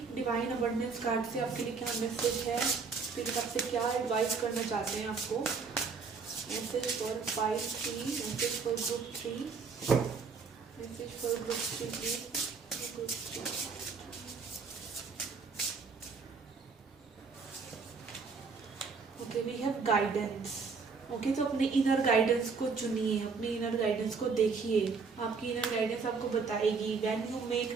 divine abundance card से आपके लिए क्या मैसेज है, स्पिरिट आपसे क्या एडवाइस करना चाहते हैं आपको। Message for 5 3, message for group 3, message for group 3 please, group 3। Okay, we have guidance, okay. तो अपने इनर गाइडेंस को चुनिए, अपनी इनर गाइडेंस को देखिए, आपकी इनर गाइडेंस आपको बताएगी। When you make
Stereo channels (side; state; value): left; quieter; 5.0 dB